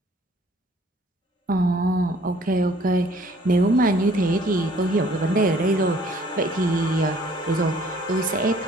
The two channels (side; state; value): both; normal; correlation 0.57